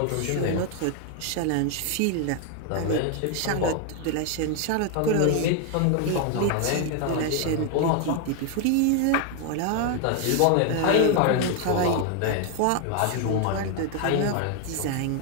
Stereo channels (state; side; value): different; both; correlation 0.01